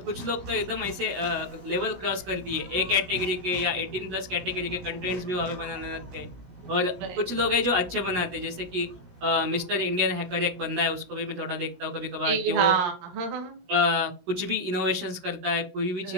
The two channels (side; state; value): left; late; 17 ms